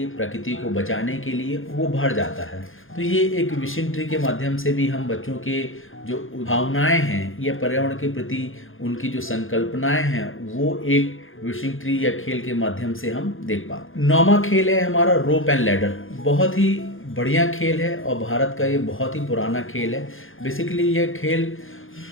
प्रकृति को बचाने के लिए, वो भर जाता है। तो ये एक विशिंग ट्री के माध्यम से भी हम बच्चों के जो भावनाएं हैं या पर्यावरण के प्रति उनकी जो संकल्पनाएं हैं वो एक विशिंग ट्री या खेल के माध्यम से हम देख पाते। 9वां खेल है हमारा रोप एंड लैडर। बहुत ही बढ़िया खेल है और भारत का ये बहुत ही पुराना खेल है। बेसिकली ये खेल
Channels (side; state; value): right; late; 0.59 ms